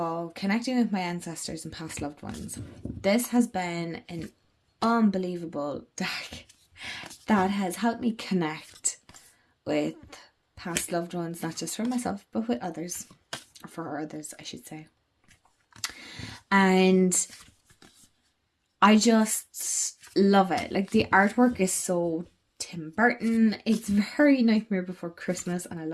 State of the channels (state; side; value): identical; both; correlation 1.00